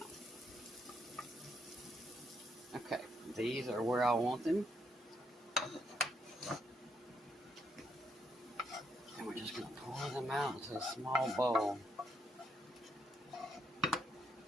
Okay, these are where I want them. And we're just going to pour them out into a small bowl.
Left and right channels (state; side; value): normal; both; correlation 0.76